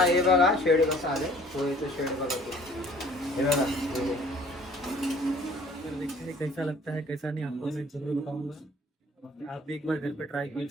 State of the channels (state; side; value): normal; both; correlation 0.53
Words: हे बघा शेड कसं आले, पोहेचं शेड बघा, हे बघा। देखते हैं कैसा लगता है कैसा नहीं, आपको मैं जरूर बताऊंगा। आप भी एक बार घर पे ट्राई